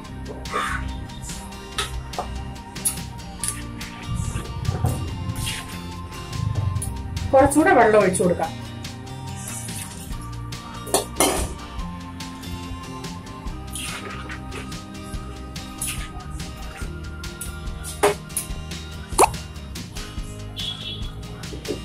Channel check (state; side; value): identical; both; correlation 1.00